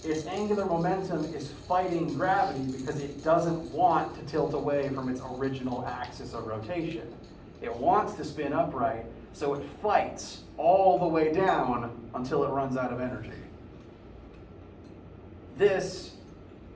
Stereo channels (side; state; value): both; identical; correlation 1.00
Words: its angular momentum is fighting gravity because it doesn't want to tilt away from its original axis of rotation. It wants to spin upright, so it fights all the way down until it runs out of energy. This